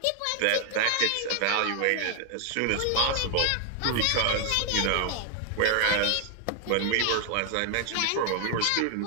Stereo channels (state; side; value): different; both; correlation 0.00